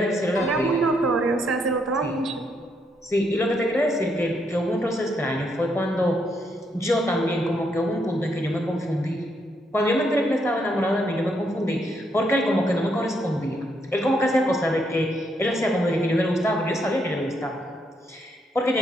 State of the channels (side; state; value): both; normal; correlation 0.76